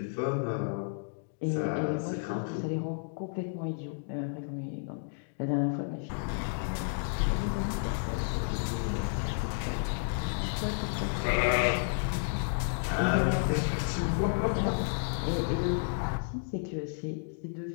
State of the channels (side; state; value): right; silent; digital silence